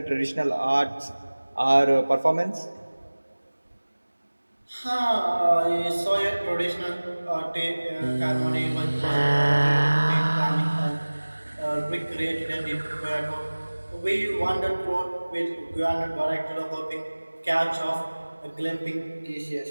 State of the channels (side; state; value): both; inverted; correlation -1.00